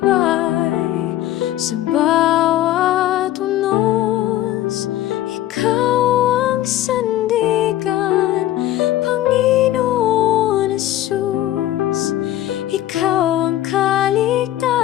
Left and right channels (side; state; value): right; quieter; 13.7 dB